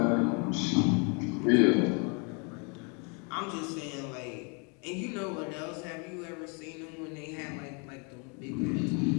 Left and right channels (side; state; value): right; quieter; 34.9 dB